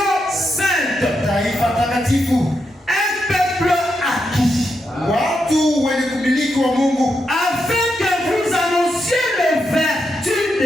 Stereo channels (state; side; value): normal; both; correlation 0.84